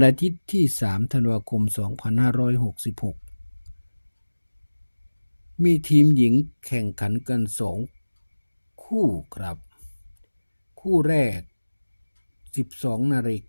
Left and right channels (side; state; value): both; inverted; correlation -1.00